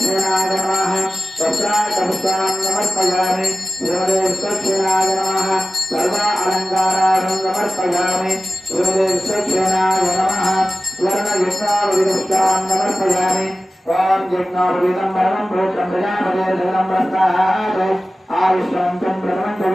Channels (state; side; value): normal; both; correlation 0.95